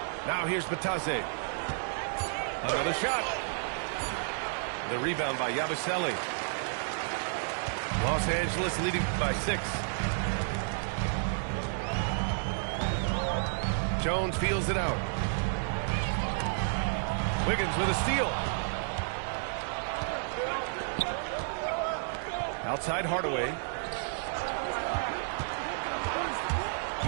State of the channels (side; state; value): left; silent; 57 dB below the other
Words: Now here's Batase. Another shot. The rebound by Yabusele. Los Angeles leading by 6. Jones feels it out. Wiggins with a steal. Outside Hardaway.